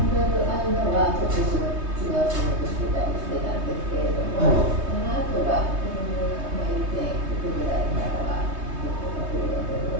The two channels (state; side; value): late; left; 3.2 ms